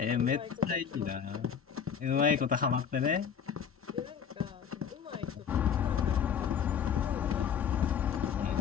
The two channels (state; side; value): quieter; right; 7.6 dB